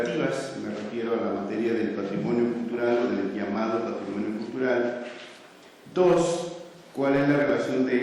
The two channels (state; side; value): identical; both; correlation 1.00